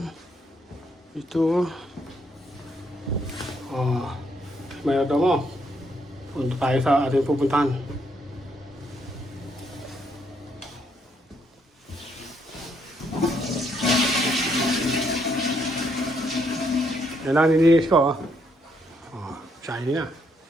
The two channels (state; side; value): normal; both; correlation 0.73